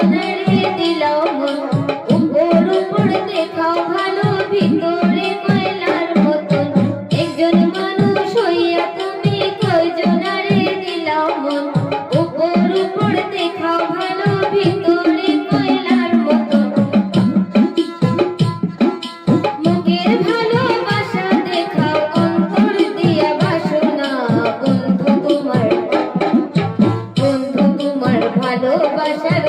দিলাও মন, উপর উপর দেখাও ভালো, ভিতরে কয়লার মতন। একজন মানুষ হইয়া তুমি কয়জনের দিলাও মন, উপর উপর দেখাও ভালো, ভিতরে কয়লার মতন। মুখের ভালোবাসা দেখাও, অন্তর দিয়া বাসনা, বন্ধু তোমার ভালোবাসার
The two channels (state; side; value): identical; both; correlation 1.00